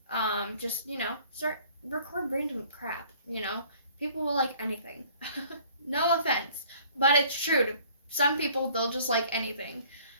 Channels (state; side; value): inverted; both; correlation -0.56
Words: Just, start record random crap, People will like anything. No offense, but it's true. To some people, they'll just like anything.